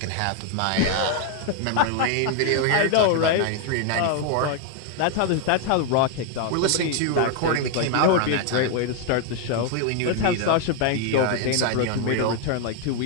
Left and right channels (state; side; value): different; both; correlation 0.00